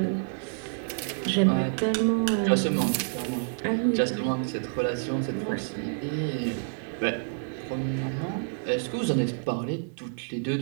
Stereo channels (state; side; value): silent; left; digital silence